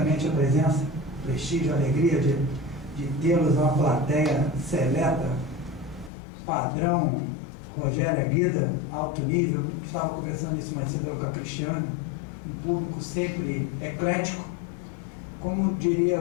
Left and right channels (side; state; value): right; drops out; at 6.1 s